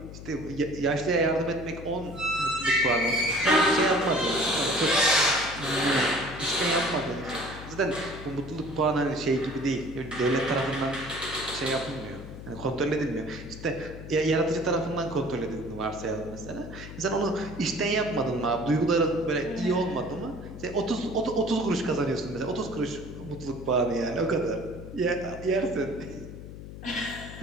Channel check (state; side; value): noise; left; hum, 12 dB below the sound